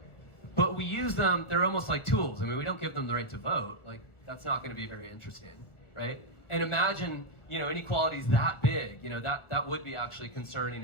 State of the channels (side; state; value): right; late; 1.4 ms